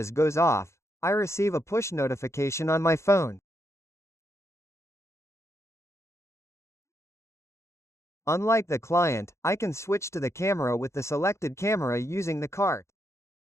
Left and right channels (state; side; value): late; right; 0.14 ms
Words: goes off, I receive a push notification on my phone. Unlike the client, I can switch to the camera with the selected camera using the cart.